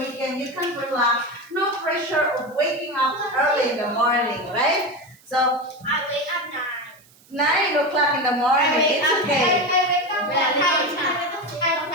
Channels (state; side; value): noise; right; hiss, 28 dB below the sound